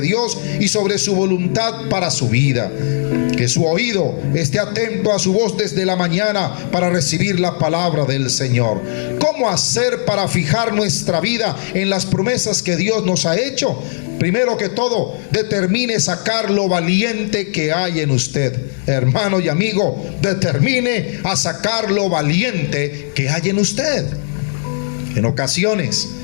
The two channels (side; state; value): right; silent; 68 dB below the other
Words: y sobre su voluntad para su vida. Que su oído esté atento a su voz desde la mañana para recibir la palabra del Señor. ¿Cómo hacer para fijar nuestra vida en las promesas que Dios nos ha hecho? Primero que todo, determine sacar lo valiente que hay en usted. Hermano y amigo, determine a sacar lo valiente que hay en usted. En ocasiones,